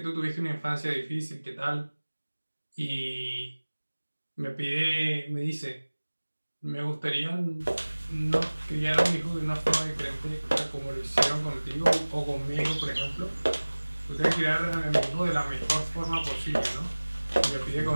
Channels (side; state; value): both; inverted; correlation -1.00